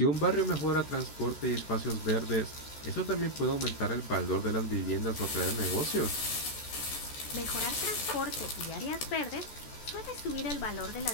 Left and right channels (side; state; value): right; late; 14 ms